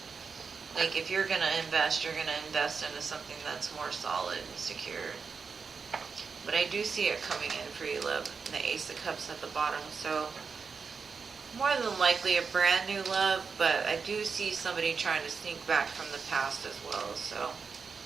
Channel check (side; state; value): left; quieter; 5.4 dB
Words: Like if you're going to invest, you're going to invest into something that's more solid and secure. But I do see it coming in for you, love. And the Ace of Cups at the bottom. So more than likely a brand new love, but I do see somebody trying to sneak back from the past as well. So